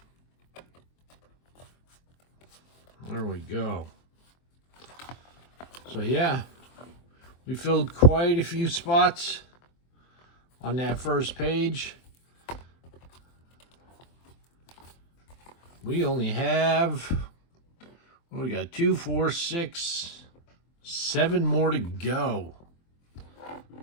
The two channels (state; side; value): late; right; 23 ms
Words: There we go. So yeah, we filled quite a few spots on that first page. We only have, we got 2, 4, 6, 7 more to go.